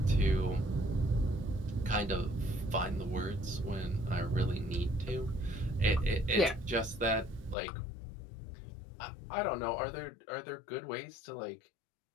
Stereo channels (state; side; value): drops out; right; at 7.6 s